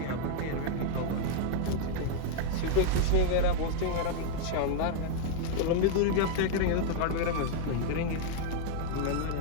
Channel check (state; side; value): different; both; correlation 0.00